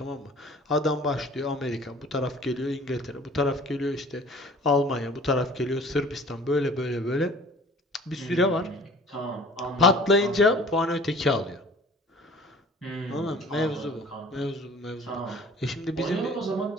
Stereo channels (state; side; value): normal; both; correlation 0.49